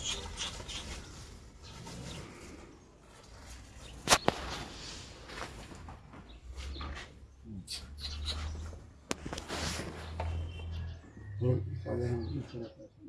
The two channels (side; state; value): both; identical; correlation 1.00